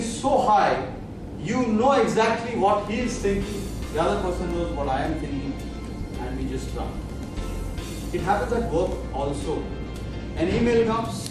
so high, you know exactly what he is thinking. The other person knows what I am thinking, and we just run. It happens at work also. An email comes,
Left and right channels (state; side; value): identical; both; correlation 1.00